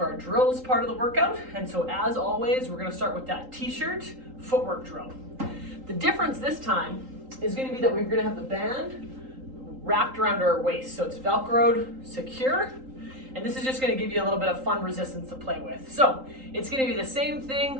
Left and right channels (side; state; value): left; late; 3.8 ms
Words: our drills part of the workout. And so as always, we're gonna start with that t-shirt footwork drill. The difference this time is gonna be that we're gonna have the band wrapped around our waist. So it's Velcroed, secure. And this is just gonna give you a little bit of fun resistance to play with. So it's gonna be the same